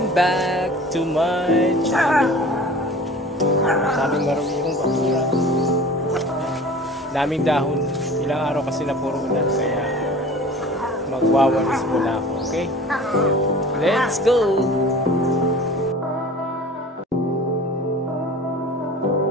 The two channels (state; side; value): normal; both; correlation 0.41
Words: back to my channel. Daming maruming bakura. Daming dahon. Ilang araw kasi na puro ulan kaya magwawalis muna ako, okay? Let's go!